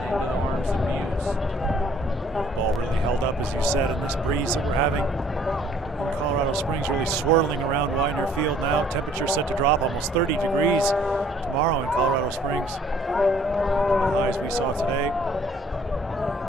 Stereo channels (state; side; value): normal; both; correlation 0.59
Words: the arms of Muse. Ball really held up, as you said, in this breeze that we're having in Colorado Springs, really swirling around Widener Field now. Temperature set to drop almost 30 degrees tomorrow in Colorado Springs. The highs we saw today.